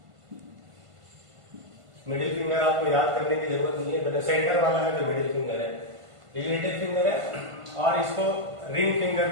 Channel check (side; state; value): left; late; 1.5 ms